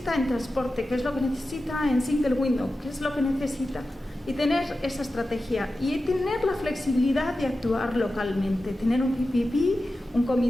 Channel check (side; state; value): both; normal; correlation 0.93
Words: en transporte? ¿Qué es lo que necesita en single window? ¿Qué es lo que necesita? Y tener esa estrategia y tener la flexibilidad de actuar localmente, tener un PPP, un